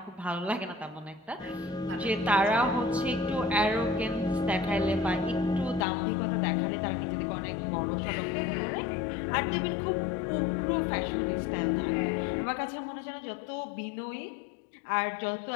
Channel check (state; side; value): drops out; right; at 5.9 s